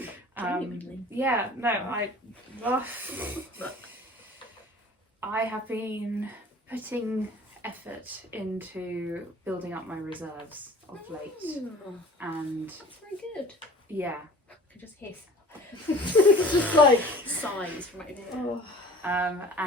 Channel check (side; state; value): both; normal; correlation 0.45